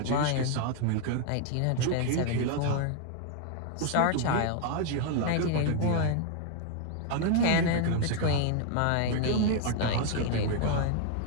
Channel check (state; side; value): different; both; correlation 0.00